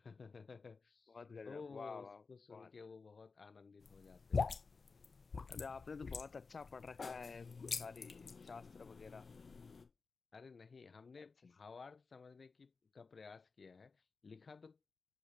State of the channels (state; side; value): quieter; right; 4.6 dB